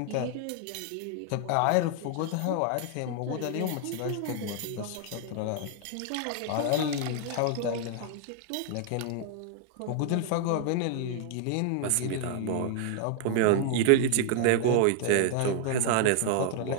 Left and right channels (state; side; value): different; both; correlation 0.00